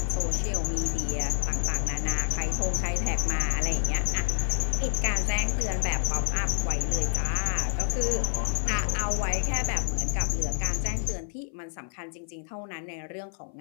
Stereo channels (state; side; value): silent; right; 55 dB below the other